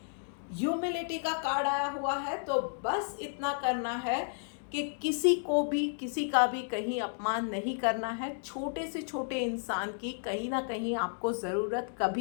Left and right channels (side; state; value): right; silent; digital silence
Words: ह्यूमिलिटी का कार्ड आया हुआ है, तो बस इतना करना है कि किसी को भी, किसी का भी कहीं अपमान नहीं करना है। छोटे से छोटे इंसान की कहीं ना कहीं आपको ज़रूरत